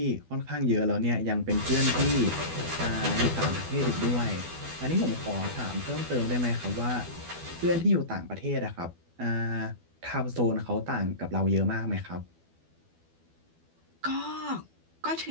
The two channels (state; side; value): late; left; 12 ms